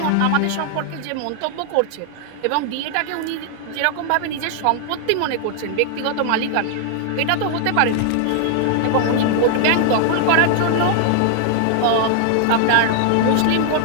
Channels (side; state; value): both; different; correlation 0.00